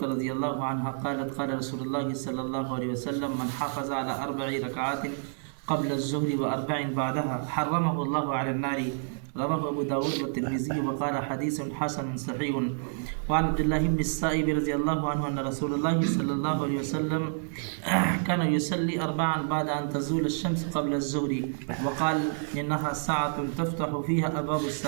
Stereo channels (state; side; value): silent; left; digital silence